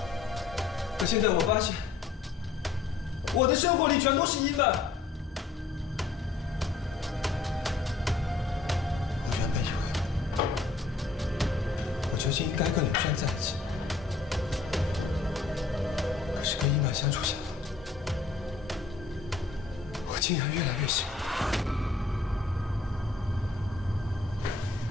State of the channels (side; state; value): right; quieter; 4.2 dB